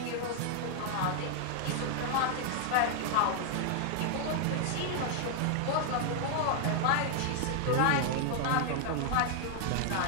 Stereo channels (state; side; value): different; both; correlation 0.00